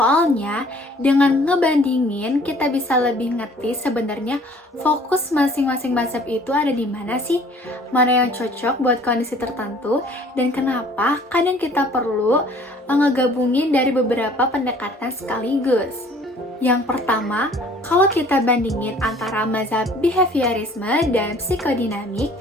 dengan ngebandingin, kita bisa lebih ngerti sebenarnya fokus masing-masing mazhab itu ada di mana sih? Mana yang cocok buat kondisi tertentu, dan kenapa kadang kita perlu ngegabungin dari beberapa pendekatan sekaligus. Yang pertama, kalau kita bandingin antara mazhab behaviorisme dan psikodinamik,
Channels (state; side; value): normal; both; correlation 0.54